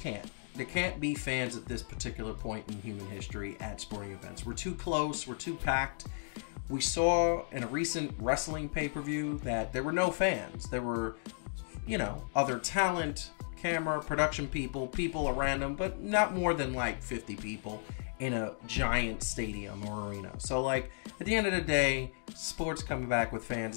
can't. There can't be fans at this particular point in human history at sporting events. We're too close. We're too packed. We saw in a recent wrestling pay-per-view that there were no fans. There were, you know, other talent, camera, production people around them, but not more than like 50 people in a giant stadium or arena. So like at the end of the day, sports coming back with fans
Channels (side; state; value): right; silent; digital silence